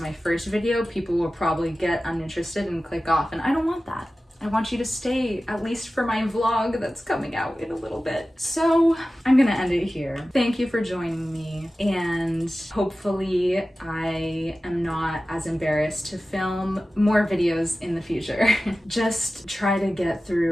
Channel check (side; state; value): both; normal; correlation 0.95